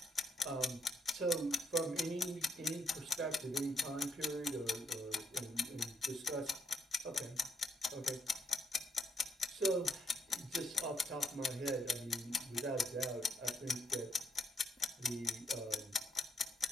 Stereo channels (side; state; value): both; normal; correlation 0.74